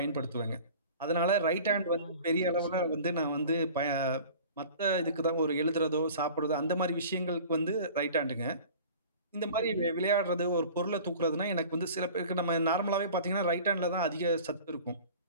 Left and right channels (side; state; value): both; inverted; correlation -0.42